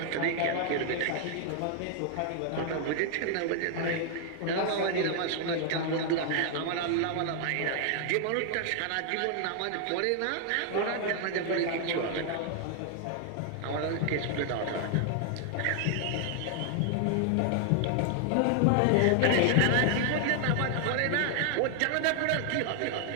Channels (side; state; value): both; different; correlation 0.00